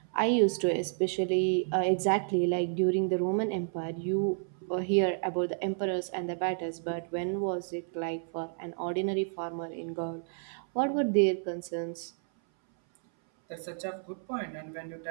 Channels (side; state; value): left; silent; 57 dB below the other